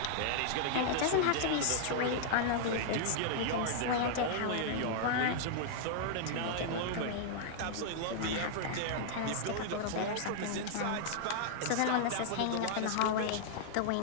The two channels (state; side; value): different; both; correlation -0.01